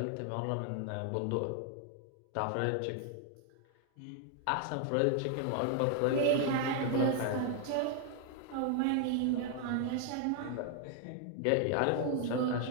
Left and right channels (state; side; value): different; both; correlation 0.00